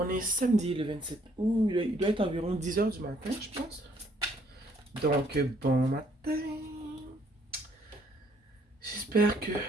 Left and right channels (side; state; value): both; normal; correlation 0.65